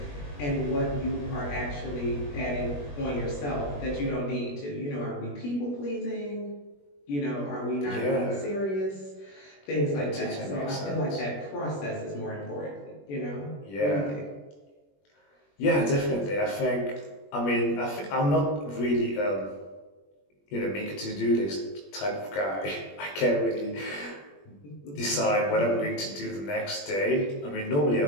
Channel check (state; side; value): late; right; 21 ms